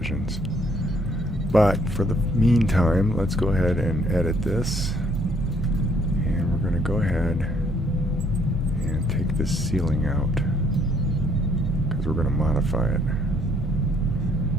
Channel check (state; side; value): normal; both; correlation 0.66